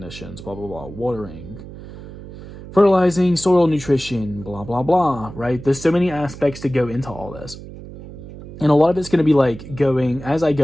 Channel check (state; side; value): noise; right; hum, 14 dB below the sound